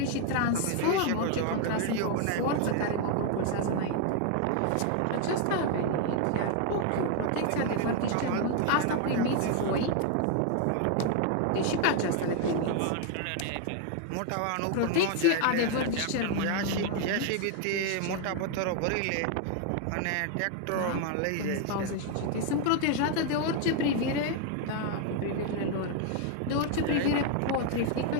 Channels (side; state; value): both; different; correlation 0.01